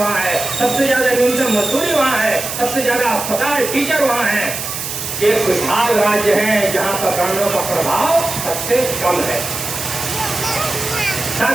है, सबसे ज्यादा न्यूनतम मजदूरी वहाँ है, सबसे ज्यादा अस्पताल, टीचर वहाँ है। ये खुशहाल राज्य है जहाँ पर कानूनों का प्रभाव सबसे कम है।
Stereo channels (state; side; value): noise; right; hiss, 6 dB below the sound